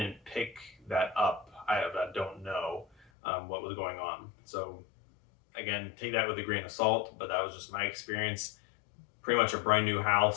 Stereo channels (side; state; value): right; drops out; at 3.1 s